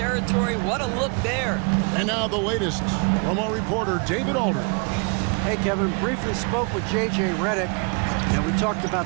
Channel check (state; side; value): quieter; left; 35.6 dB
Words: What a look there. And now the latest from our reporter, David Aldridge. Hey, Kevin, briefly spoke with J.J. Redick, and we talked